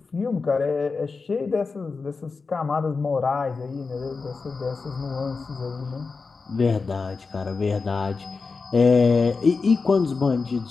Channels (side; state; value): right; quieter; 4.4 dB